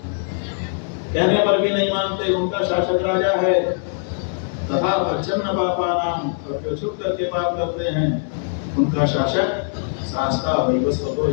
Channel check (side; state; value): right; silent; digital silence